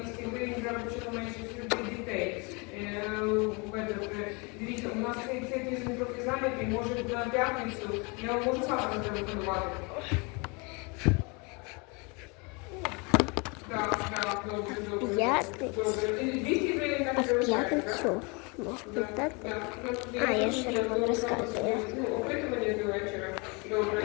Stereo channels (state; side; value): quieter; right; 30.3 dB